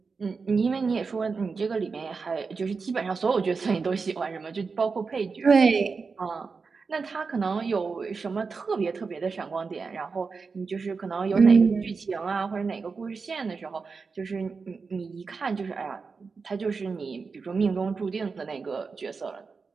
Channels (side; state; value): left; quieter; 4.8 dB